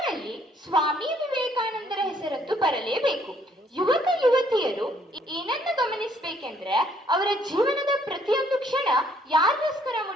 ಸ್ವಾಮಿ ವಿವೇಕಾನಂದರ ಹೆಸರದ್ದು ಬರಲೇಬೇಕು. ಯುವಕ ಯುವತಿಯರು ಏನನ್ನು ಗಮನಿಸಬೇಕೆಂದ್ರೆ, ಅವರ ಜೀವನದ ಪ್ರತಿಯೊಂದು ಕ್ಷಣ ಯಾರಿಗೋಸ್ಕರ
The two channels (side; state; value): both; normal; correlation 0.65